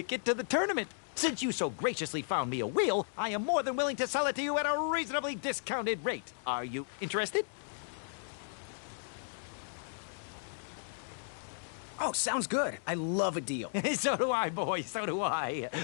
to the tournament. Since you so graciously found me a wheel, I am more than willing to sell it to you at a reasonably discounted rate. Are you interested? Oh, sounds good. I love a deal. So do I, boy, so do I.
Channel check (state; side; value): silent; right; digital silence